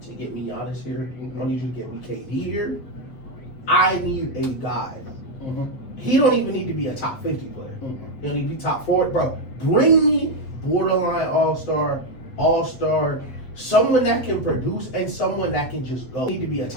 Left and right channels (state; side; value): late; right; 8.0 ms